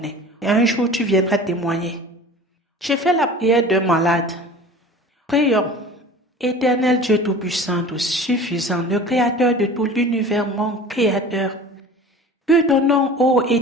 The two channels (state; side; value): normal; both; correlation 0.40